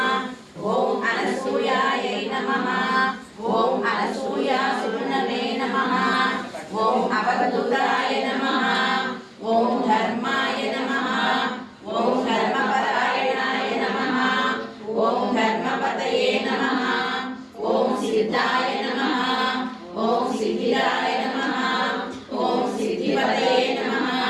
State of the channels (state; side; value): identical; both; correlation 1.00